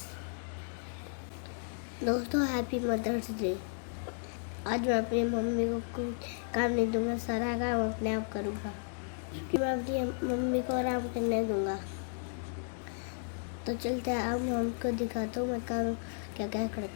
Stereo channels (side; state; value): right; silent; digital silence